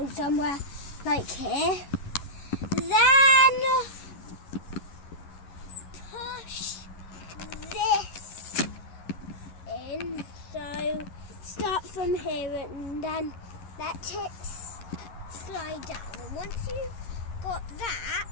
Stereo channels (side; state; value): right; late; 11 ms